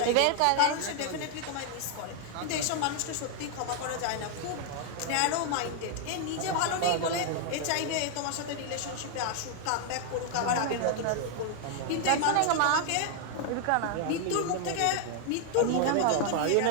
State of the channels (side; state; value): both; different; correlation 0.00